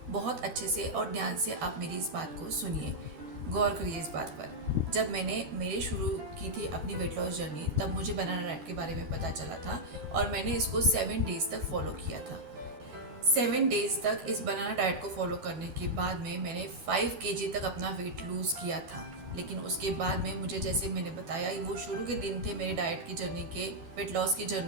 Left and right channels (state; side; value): late; left; 13 ms